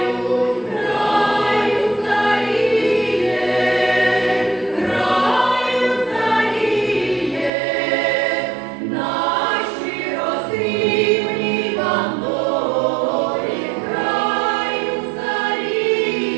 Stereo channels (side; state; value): left; drops out; at 7.5 s